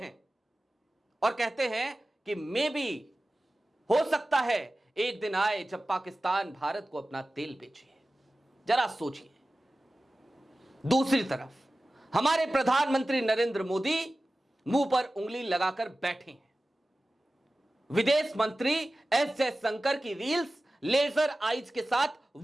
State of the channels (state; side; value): normal; both; correlation 0.96